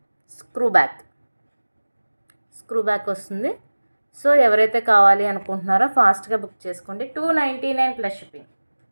స్క్రూ బ్యాక్ వస్తుంది. సో ఎవరైతే కావాలి అనుకుంటున్నారో ఫాస్ట్గా బుక్ చేసుకోండి. 299 plus shipping.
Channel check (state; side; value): inverted; both; correlation -1.00